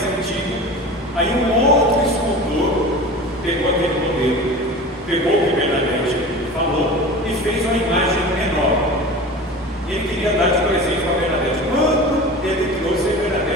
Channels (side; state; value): both; normal; correlation 0.34